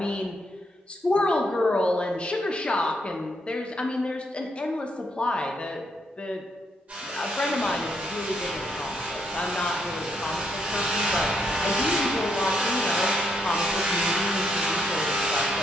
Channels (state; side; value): normal; both; correlation 0.76